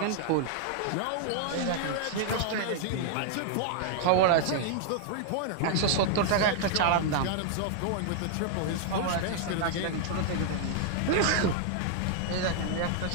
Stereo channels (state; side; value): different; both; correlation 0.00